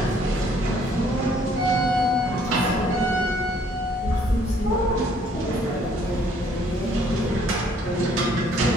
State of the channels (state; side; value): normal; both; correlation 0.62